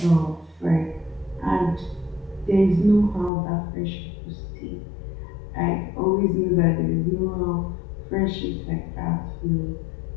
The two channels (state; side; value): drops out; right; at 3.3 s